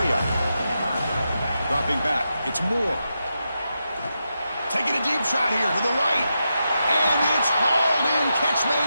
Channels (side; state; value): both; inverted; correlation -0.87